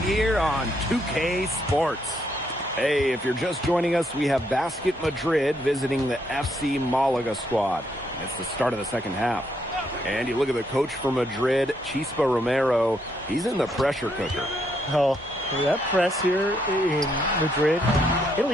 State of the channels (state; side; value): normal; both; correlation 0.74